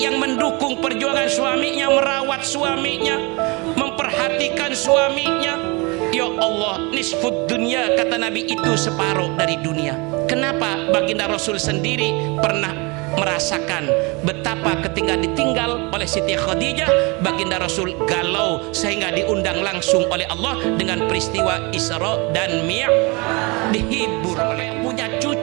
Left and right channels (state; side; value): quieter; left; 27.9 dB